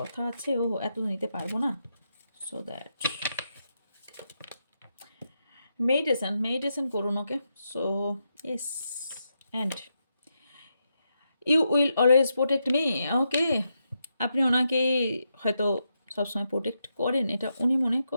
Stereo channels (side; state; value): both; inverted; correlation -0.84